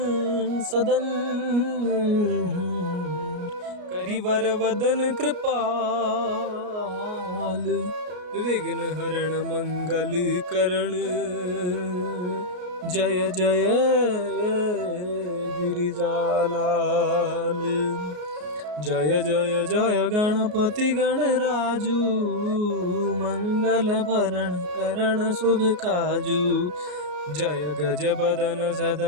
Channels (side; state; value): left; late; 33 ms